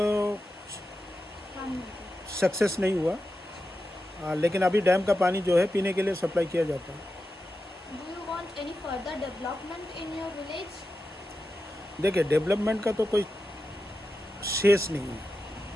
पानी सक्सेस नहीं हुआ। लेकिन अभी डैम का पानी जो है पीने के लिए सप्लाई किया जाता है। Do you want any further development in your village? देखिए, डेवलपमेंट का तो कोई शेष नहीं है।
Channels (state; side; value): normal; both; correlation 0.90